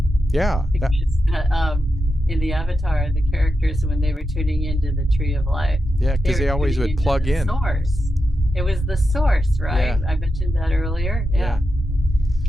Yeah. Because, in the Avatar, the characters, when they were tuning into the Tree of Life, because they always would plug in. Source. It was the source, right? I mentioned that earlier. Yeah.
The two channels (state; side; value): normal; both; correlation 0.88